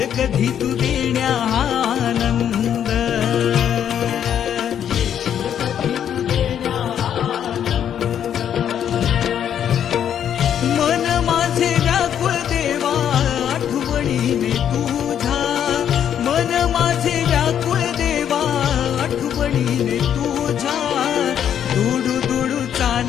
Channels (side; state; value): right; quieter; 9.3 dB